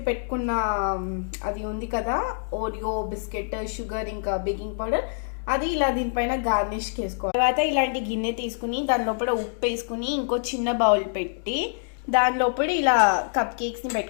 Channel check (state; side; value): silent; right; digital silence